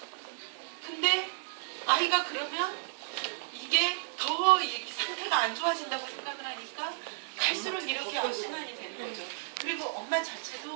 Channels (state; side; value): silent; left; digital silence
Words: 근데 아이가 그러면 이게 더 이렇게 상태가 안 좋아진다고 생각을 하니까 갈수록 이렇게 악순환이 되는 거죠. 그리고 엄마